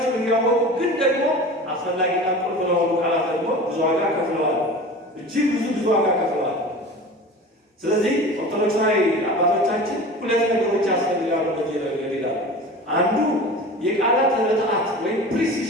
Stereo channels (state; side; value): normal; both; correlation 0.36